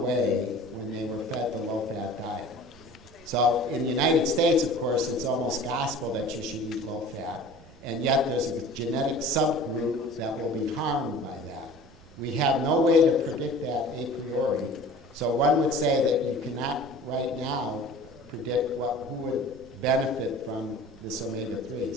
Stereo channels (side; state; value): right; noise; rumble, 25 dB below the sound